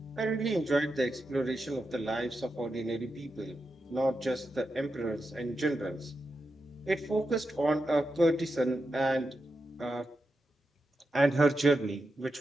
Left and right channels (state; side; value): normal; both; correlation 0.88